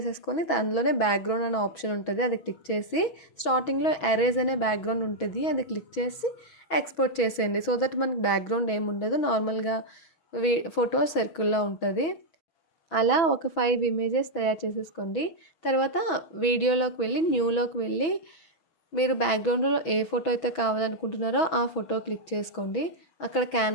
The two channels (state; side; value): late; right; 6.1 ms